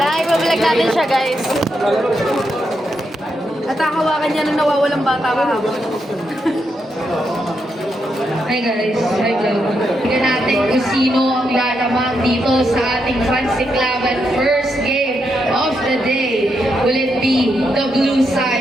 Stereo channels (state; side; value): normal; both; correlation 0.82